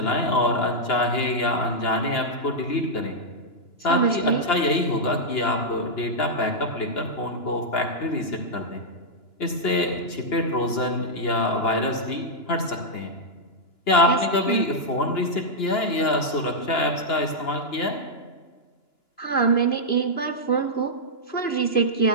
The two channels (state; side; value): late; right; 2.9 ms